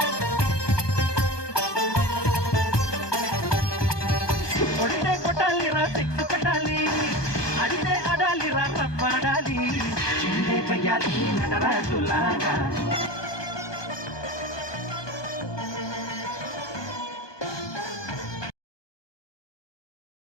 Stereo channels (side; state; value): right; late; 1.2 ms